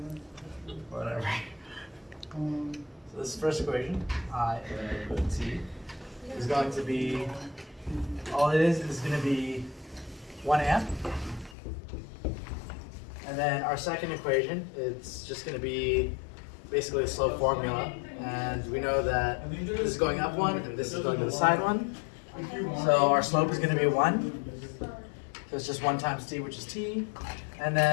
Whatever. So this first equation, I of t, is going to be, all it is going to be 1 amp. And then our second equation, it's just going to be basically a slope formula, and we know that this is going up 1 and this is going to the side 1. So our slope is going to be 1. So it's just 1 times t, which is t. And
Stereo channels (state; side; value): drops out; right; at 11.6 s